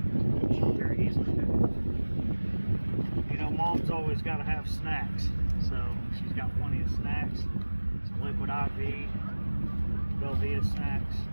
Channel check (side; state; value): both; inverted; correlation -1.00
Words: She very easily did. You know, Mom's always got to have snacks, so she's got plenty of snacks. Some liquid IV, Velveeta snacks.